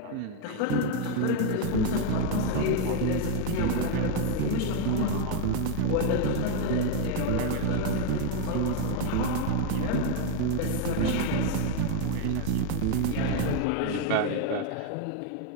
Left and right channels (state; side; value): different; both; correlation 0.02